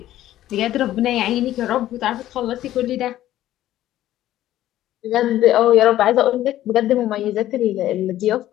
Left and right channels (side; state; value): right; quieter; 13.6 dB